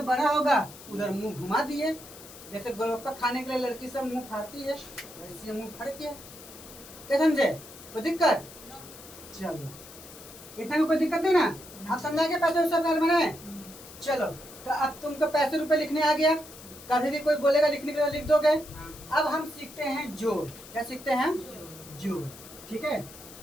बड़ा होगा उधर मुंह घुमा दिए। जैसे गोलगप्पा खाने के लिए लड़की सब मुंह फाड़ती है, वैसे मुंह फाड़ किया, क्या समझे, कोई दिक्कत, चलो इतना में कोई दिक्कत नहीं ना, आप समझा के पैसे सब घर में। चलो तो अब तुमको पैसे रुपए लिखने आ गया, कभी भी कोई बोलेगा लिखने के लिए लिख दोगे। अब हम सीखते हैं जोड़, क्या सीखते हैं, जोड़, ठीक है।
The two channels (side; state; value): left; noise; hiss, 17 dB below the sound